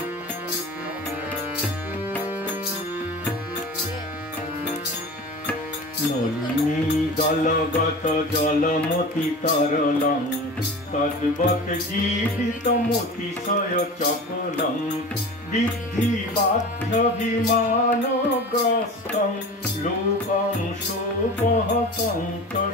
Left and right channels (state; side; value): normal; both; correlation 0.34